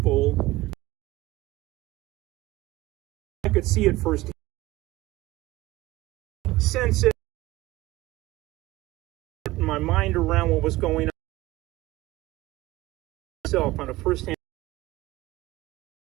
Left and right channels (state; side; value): quieter; left; 18.4 dB